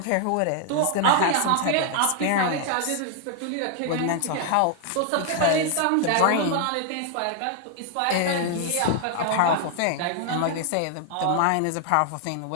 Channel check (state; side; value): different; both; correlation 0.00